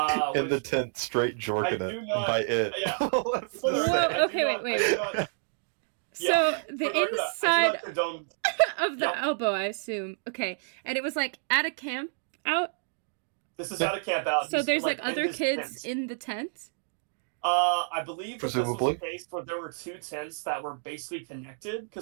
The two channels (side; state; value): left; silent; digital silence